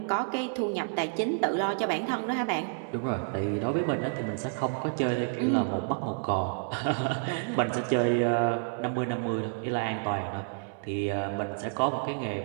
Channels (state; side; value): silent; left; 58 dB below the other